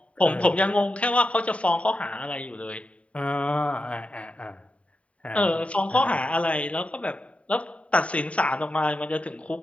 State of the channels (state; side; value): late; right; 0.064 ms